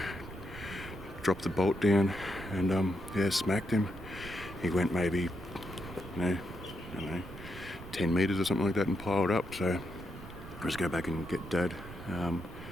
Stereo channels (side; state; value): right; noise; rumble, 14 dB below the sound